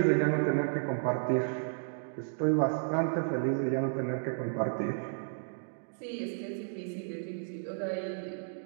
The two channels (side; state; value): left; silent; digital silence